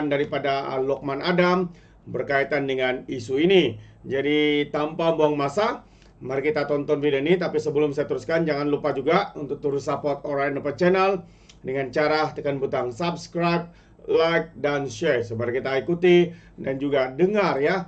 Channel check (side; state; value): both; identical; correlation 1.00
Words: daripada Lokman Adam berkaitan dengan isu ini. Jadi tanpa buang masa, mari kita tonton video ini. Tapi sebelum saya teruskan, jangan lupa juga untuk terus support Alright Nopo Channel dengan cara tekan butang subscribe, like, dan share. Mari kita ikuti dan juga dengar